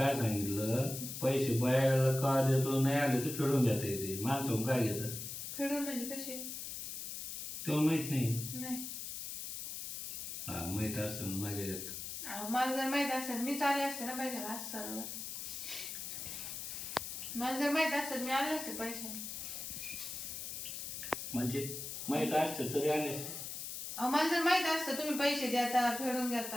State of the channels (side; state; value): left; noise; hiss, 6 dB below the sound